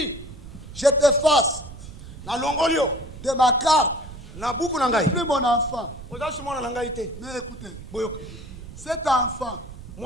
Je t'efface de ma carte. Plus mon enfant. Mais écoutez, cet enfant,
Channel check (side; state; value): right; noise; rumble, 14 dB below the sound